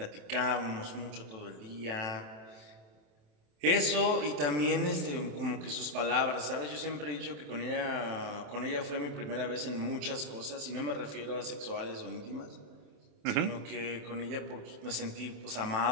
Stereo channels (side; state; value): left; late; 27 ms